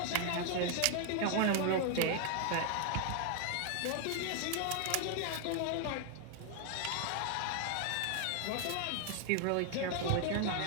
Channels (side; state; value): both; different; correlation 0.00